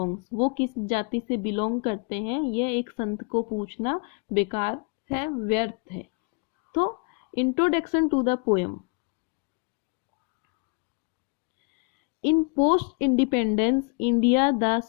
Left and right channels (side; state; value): right; quieter; 34.7 dB